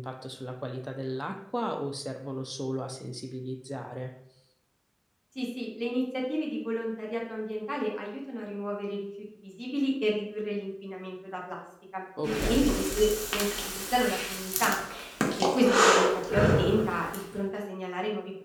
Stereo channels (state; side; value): identical; both; correlation 1.00